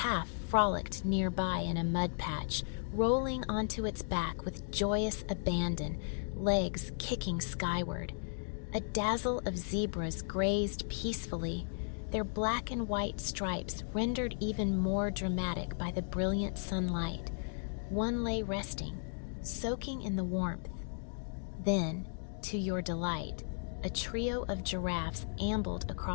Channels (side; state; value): right; silent; digital silence